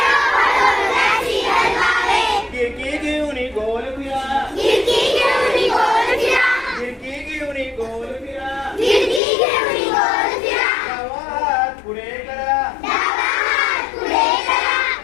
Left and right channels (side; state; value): right; drops out; at 9.2 s